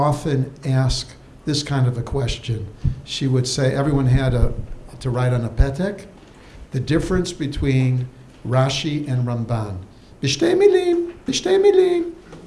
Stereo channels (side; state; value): both; identical; correlation 1.00